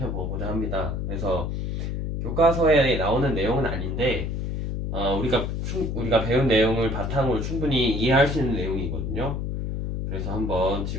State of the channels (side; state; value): left; noise; hum, 2 dB below the sound